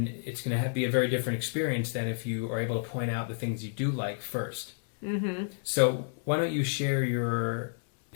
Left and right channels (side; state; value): right; silent; 58 dB below the other